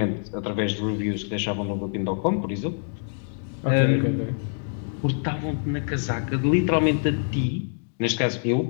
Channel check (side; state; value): right; silent; 61 dB below the other